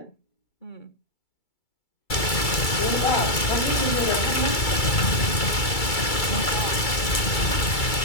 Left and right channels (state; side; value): late; right; 2.3 ms